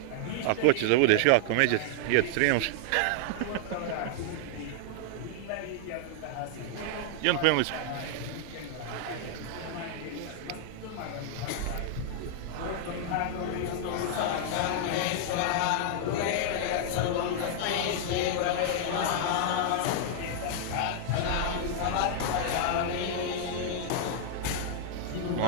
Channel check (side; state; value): both; different; correlation -0.01